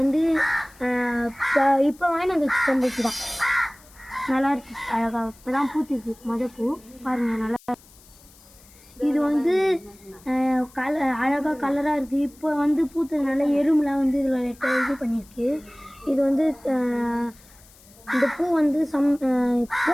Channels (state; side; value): noise; left; hiss, 25 dB below the sound